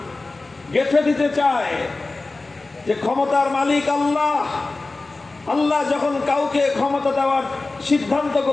গেঁথে দিতে চায় যে ক্ষমতার মালিক আল্লাহ। আল্লাহ যখন কাউকে ক্ষমতা দেওয়ার সিদ্ধান্ত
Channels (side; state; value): right; quieter; 3.4 dB